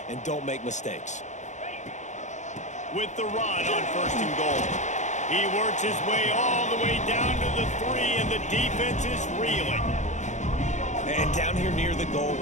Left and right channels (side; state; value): right; late; 0.35 ms